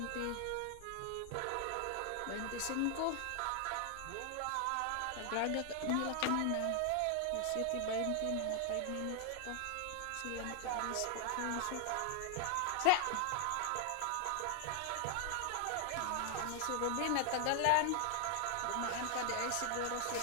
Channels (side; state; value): both; different; correlation 0.00